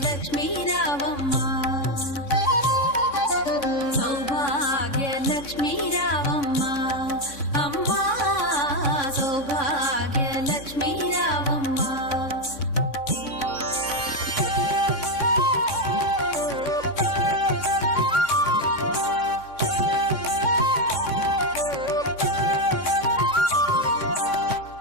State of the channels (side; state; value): right; late; 3.6 ms